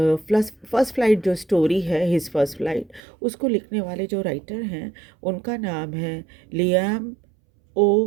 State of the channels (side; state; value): left; drops out; at 3.0 s